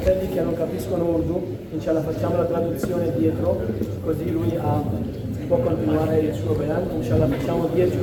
che non capiscono Urdu, inshallah facciamo la traduzione dietro, così lui può continuare il suo bayan, inshallah facciamo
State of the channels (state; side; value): identical; both; correlation 1.00